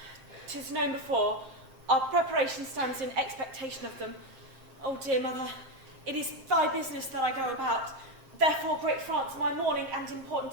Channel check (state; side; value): late; left; 7.6 ms